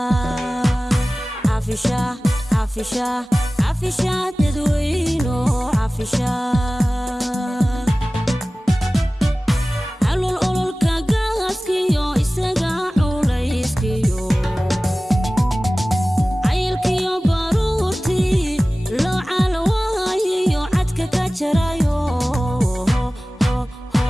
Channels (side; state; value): both; normal; correlation 0.97